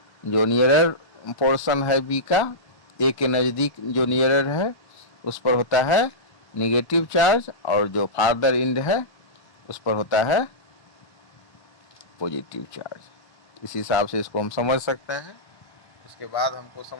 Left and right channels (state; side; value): late; right; 1.0 ms